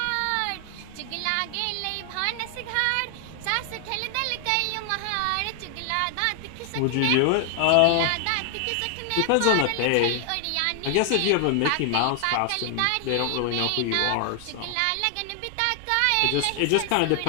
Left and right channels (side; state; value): both; different; correlation 0.00